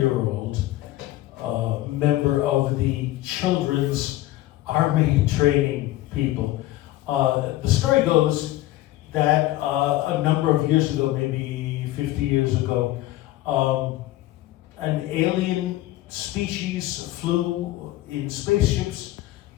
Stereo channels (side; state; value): right; quieter; 16.2 dB